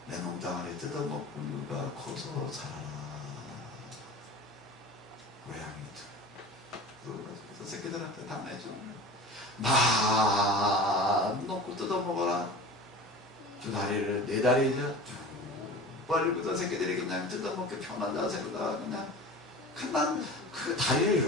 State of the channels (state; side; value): normal; both; correlation 0.36